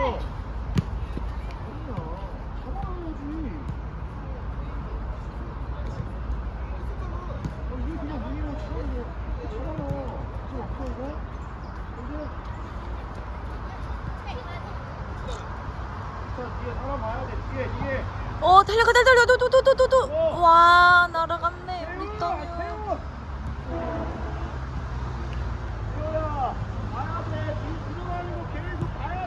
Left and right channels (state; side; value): identical; both; correlation 1.00